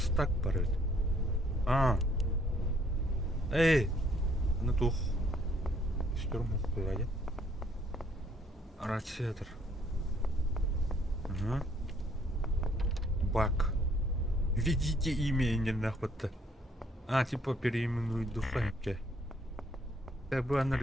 парит. Эй! Ну тух. Стёрму хуяде. Радиатор. Ага. Бак. Введите имя нахуй-то. Типа переименуй духовки. Как бы она...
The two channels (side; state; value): both; normal; correlation 0.65